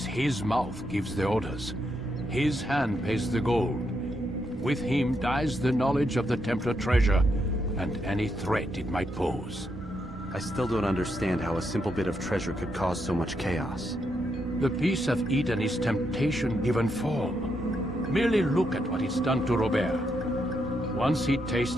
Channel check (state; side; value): normal; both; correlation 0.80